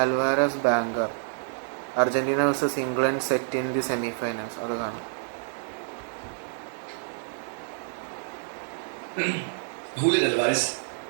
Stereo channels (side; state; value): left; silent; digital silence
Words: Alvarez banker, Argentina versus England set in the semi finals. അത് കാണാം. Julian Alvarez.